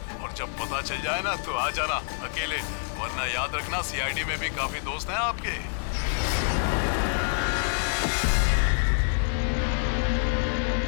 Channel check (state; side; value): silent; right; 60 dB below the other